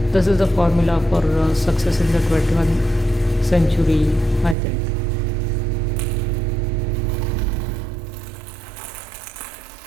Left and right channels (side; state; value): left; drops out; at 4.5 s